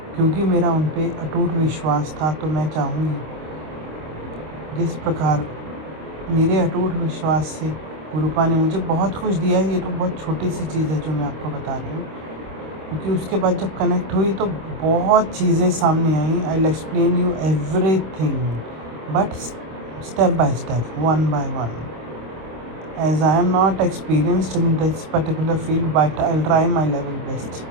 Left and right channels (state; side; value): late; left; 26 ms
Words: क्योंकि मेरा उन पे अटूट विश्वास था। तो मैं चाहूँगी जिस प्रकार मेरे अटूट विश्वास से गुरुपा ने मुझे बहुत कुछ दिया है, ये तो बहुत छोटी सी चीज़ है जो मैं आपको बता रही हूँ, क्योंकि उसके बाद जब कनेक्ट हुई तो बहुत चीज़ें सामने आई। I will explain you everything, but step by step, one by one, as I am not experienced in this particular field, but I'll try my level best.